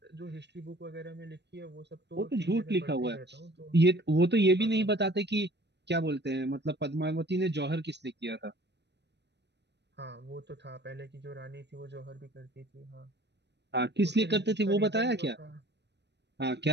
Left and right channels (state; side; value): late; left; 0.50 ms